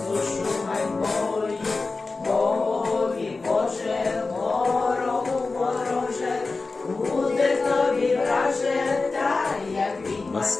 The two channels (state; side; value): quieter; right; 3.8 dB